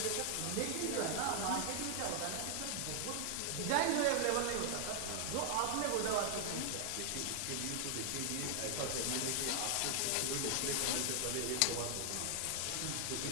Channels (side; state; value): both; different; correlation 0.00